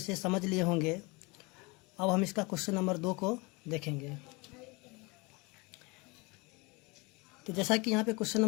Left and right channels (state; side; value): quieter; right; 26.7 dB